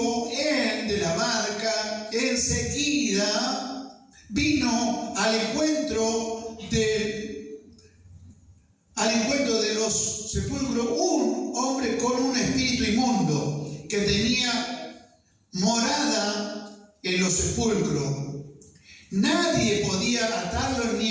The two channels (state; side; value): identical; both; correlation 1.00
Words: él de la barca, enseguida vino al encuentro de los sepulcros un hombre con un espíritu inmundo que tenía morada en los sepulcros. Nadie podía atarlo